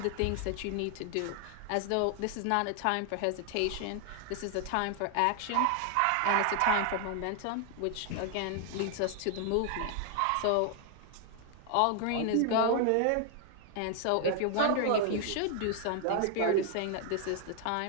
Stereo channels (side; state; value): both; different; correlation 0.00